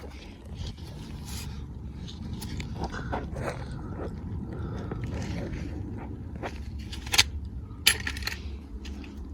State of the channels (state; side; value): identical; both; correlation 1.00